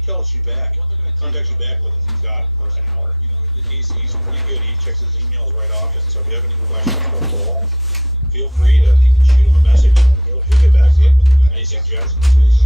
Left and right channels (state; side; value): normal; both; correlation 0.52